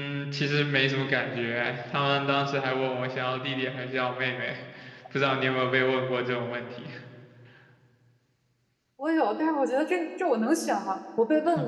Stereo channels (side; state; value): both; identical; correlation 1.00